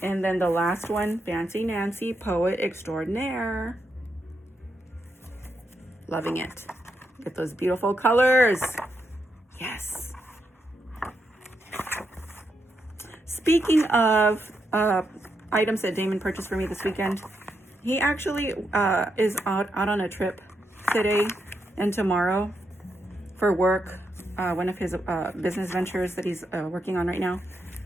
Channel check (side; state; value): both; normal; correlation 0.82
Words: And then the last one, Fancy Nancy Poet Extraordinaire. Loving it. Get those beautiful colors. Yes. Speaking of items that Damon purchased for me this weekend, he actually is out on a trip today and tomorrow for work, one of his business ventures that he's working on right now.